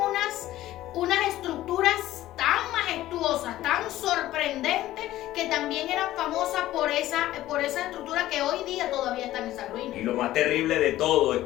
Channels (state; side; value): quieter; right; 14.8 dB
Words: estructuras tan majestuosas, tan sorprendentes, que también eran famosas por esa estructura, que hoy día todavía están en esa ruina. Y lo más terrible de todo es